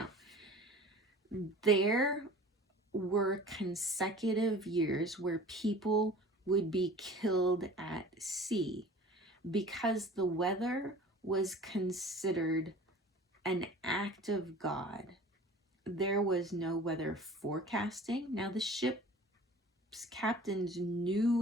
there were consecutive years where people would be killed at sea because the weather was considered an act of God. There was no weather forecasting. Now, the ship's captains knew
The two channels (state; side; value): normal; both; correlation 0.43